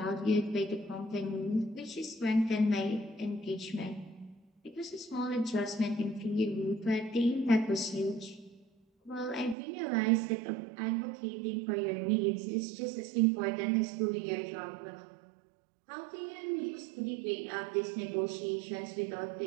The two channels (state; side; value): drops out; left; at 9.6 s